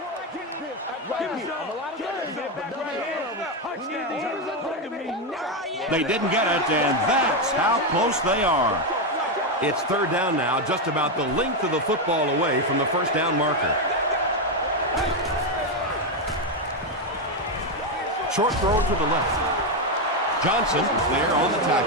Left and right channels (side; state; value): both; normal; correlation 0.07